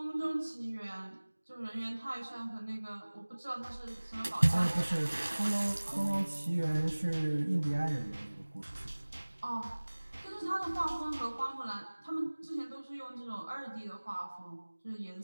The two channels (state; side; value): inverted; both; correlation -1.00